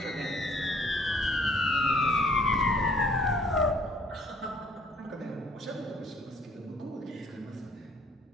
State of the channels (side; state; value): both; normal; correlation 0.60